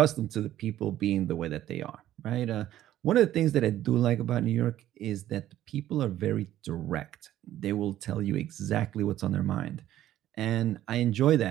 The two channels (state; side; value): quieter; left; 13.0 dB